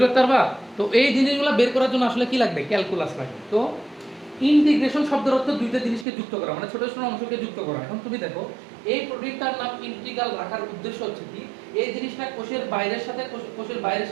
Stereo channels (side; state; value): left; drops out; at 6.1 s